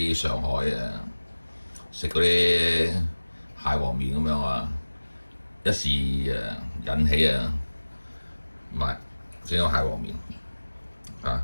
上海食嗰啲蟹黃面咁樣啊，一時引起買整個蟹黃面啊！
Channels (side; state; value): both; inverted; correlation -1.00